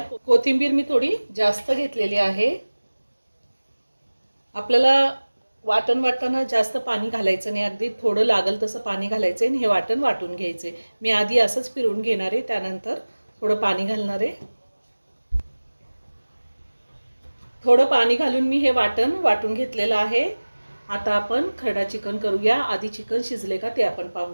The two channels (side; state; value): both; inverted; correlation -1.00